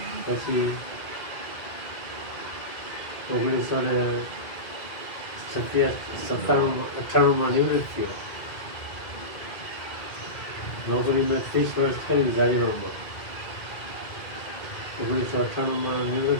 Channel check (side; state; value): right; late; 2.1 ms